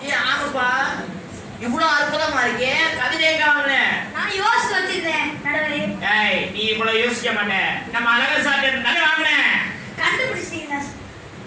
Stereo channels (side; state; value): both; identical; correlation 1.00